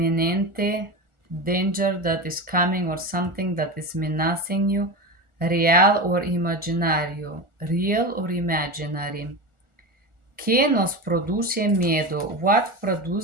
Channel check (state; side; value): late; left; 1.4 ms